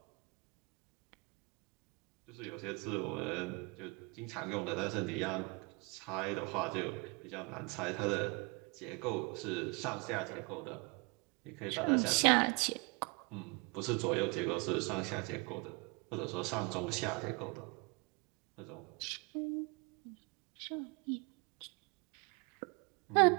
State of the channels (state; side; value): quieter; left; 29.6 dB